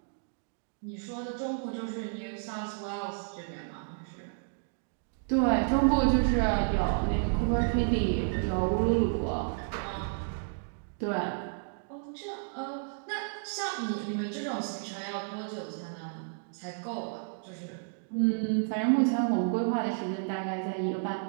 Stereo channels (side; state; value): left; silent; digital silence